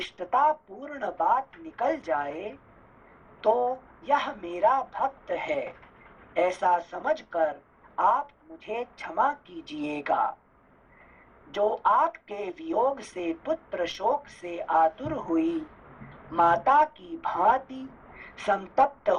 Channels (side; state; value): both; identical; correlation 1.00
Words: पूर्ण बात निकल जाए तो यह मेरा भक्त है ऐसा समझकर आप मुझे क्षमा कीजिएगा। जो आपके वियोग से पुत्र शोक से आतुर हुई माता की भांति संतप्त